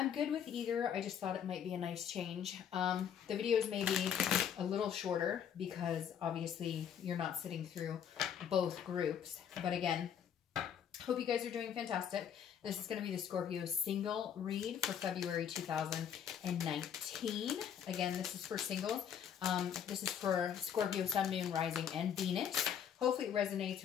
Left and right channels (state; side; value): quieter; right; 8.6 dB